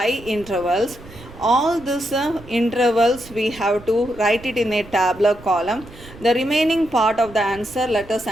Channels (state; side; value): noise; right; rumble, 19 dB below the sound